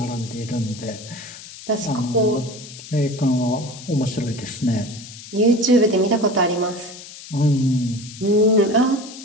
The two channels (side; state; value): left; noise; hiss, 15 dB below the sound